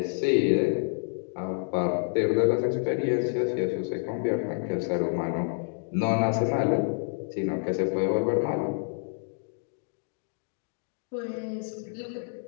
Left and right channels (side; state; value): right; silent; digital silence